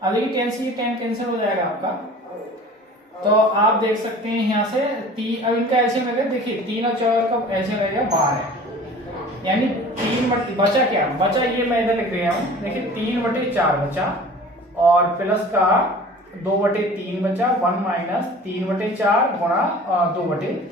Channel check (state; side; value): normal; both; correlation 0.43